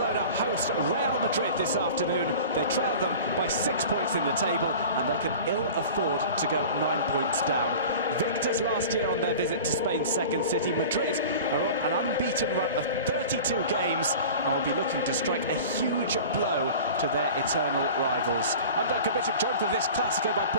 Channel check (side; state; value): both; inverted; correlation -0.38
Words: host Real Madrid this afternoon. They trail them by 6 points in the table and they can ill afford to go 9 points down. Victors last year on their visit to Spain's second city, Madrid are on an unbeaten run of 32 games and will be looking to strike a huge blow to their eternal rivals. I'm Duncan Bishop, joined for this Clásico by